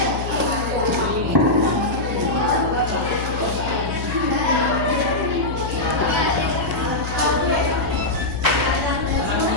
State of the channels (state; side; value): noise; left; hum, 6 dB below the sound